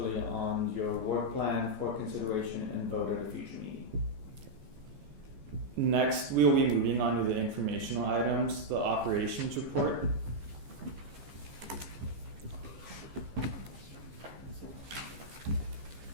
on your work plan for consideration and vote at a future meeting. Next, we will be moving on to the informational items, the operations report.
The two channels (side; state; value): left; late; 14 ms